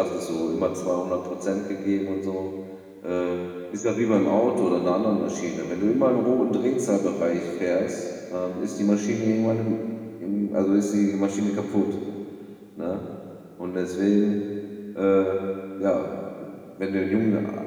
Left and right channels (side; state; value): both; identical; correlation 1.00